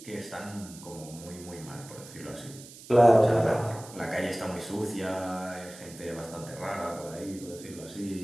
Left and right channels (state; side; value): noise; right; hiss, 17 dB below the sound